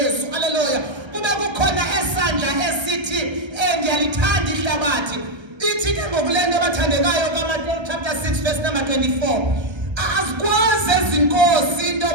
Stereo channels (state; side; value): late; left; 1.3 ms